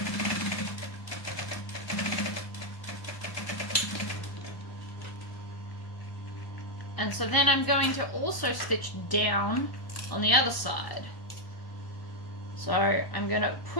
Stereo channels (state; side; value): late; right; 1.1 ms